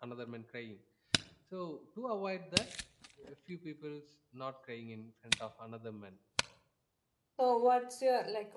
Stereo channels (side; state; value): both; identical; correlation 1.00